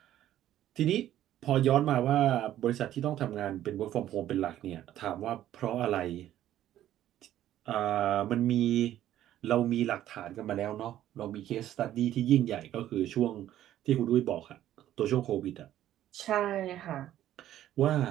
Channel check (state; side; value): quieter; left; 12.5 dB